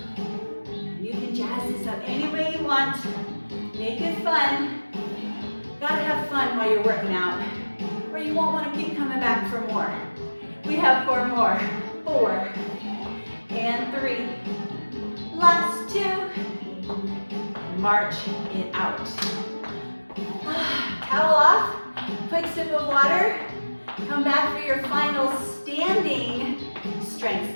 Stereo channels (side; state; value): both; inverted; correlation -1.00